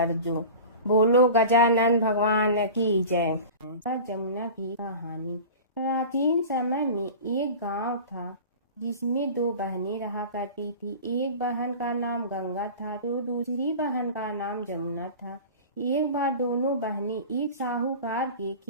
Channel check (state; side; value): inverted; both; correlation -0.35